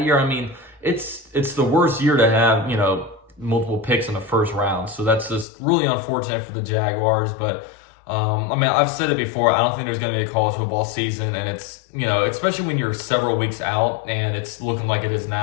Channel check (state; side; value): drops out; right; at 5.5 s